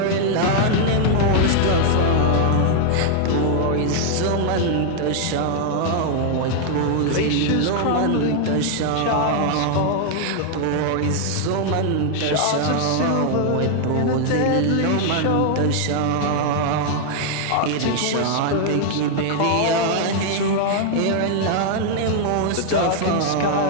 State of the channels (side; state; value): both; different; correlation 0.00